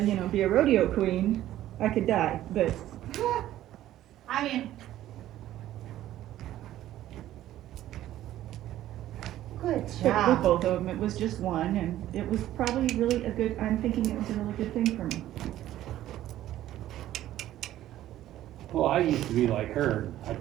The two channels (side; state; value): left; quieter; 13.4 dB